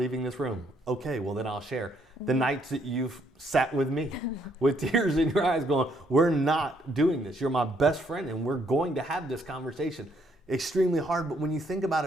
this room. Okay, well then I'll share. The nights that you've sat with me with tears in your eyes going, we're not doing this. You're my best friend and we're going to have this conversation. Extremely hard, but when you think about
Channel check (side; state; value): both; normal; correlation 0.70